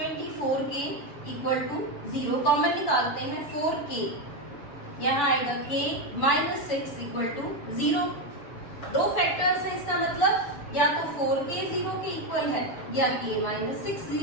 equal to 0। Common निकालते हैं, 4k यहाँ आएगा k -6 इक्वल टू 0। दो फैक्टर्स हैं, इसका मतलब या तो 4k 0 के इक्वल है या k -6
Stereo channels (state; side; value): late; right; 7.0 ms